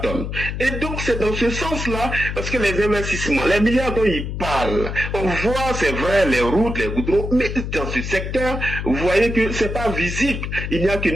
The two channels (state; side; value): noise; left; hum, 5 dB below the sound